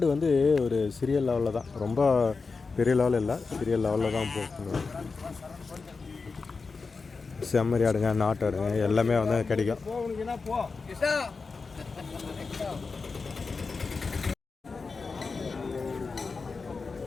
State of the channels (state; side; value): quieter; right; 4.5 dB